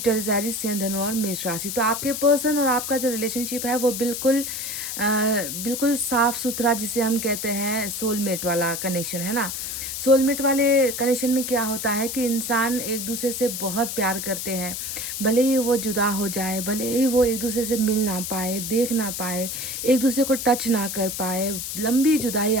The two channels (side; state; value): left; noise; hiss, 5 dB below the sound